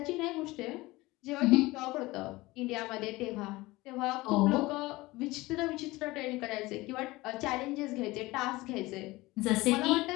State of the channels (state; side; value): quieter; right; 20.4 dB